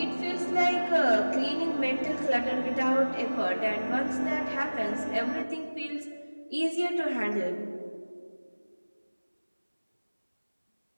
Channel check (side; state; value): both; inverted; correlation -1.00